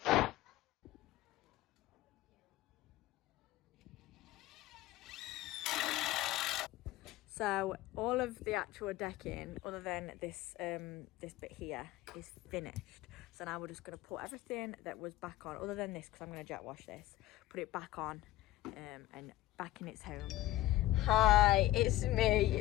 So all of the actual decking, other than this this bit here, is finished. So now we're just going to put everything that was back on, other than this, because I'm going to jet wash this, put it back on and back in its home. Hi, it's me.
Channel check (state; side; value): quieter; right; 16.1 dB